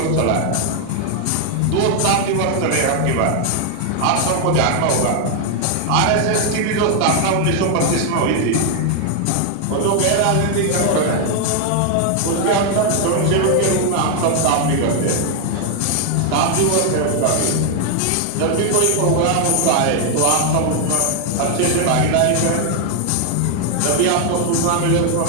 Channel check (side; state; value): both; different; correlation 0.00